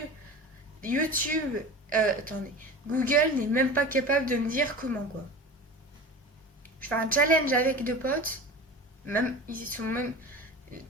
Attendez, Google n'est même pas capable de me dire comment quoi. Je fais un challenge avec 2 potes, Google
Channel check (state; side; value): normal; both; correlation 0.33